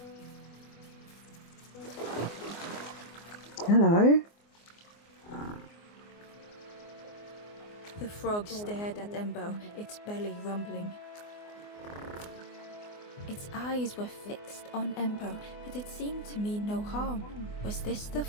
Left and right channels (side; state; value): right; late; 24 ms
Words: Hello. The frog stared at Ember, its belly rumbling. Its eyes were fixed on Ember, but it seemed to mean no harm. Was this the